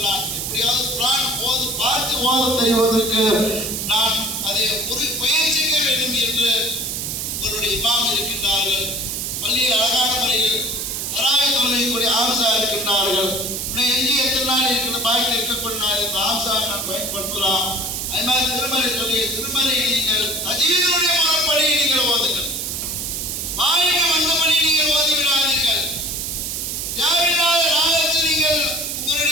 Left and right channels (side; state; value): right; noise; hiss, 3 dB below the sound